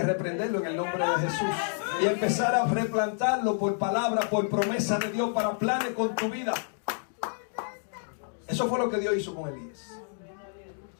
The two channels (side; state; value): right; silent; digital silence